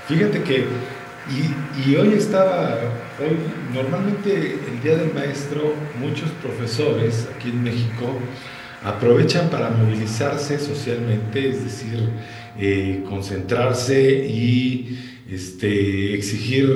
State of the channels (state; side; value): identical; both; correlation 1.00